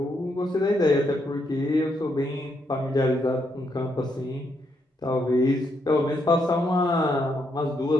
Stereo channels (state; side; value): normal; both; correlation 0.77